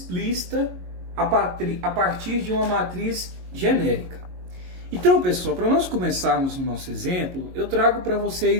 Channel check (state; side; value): late; left; 22 ms